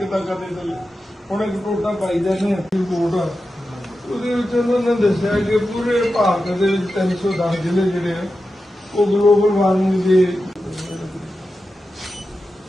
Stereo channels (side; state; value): both; normal; correlation 0.91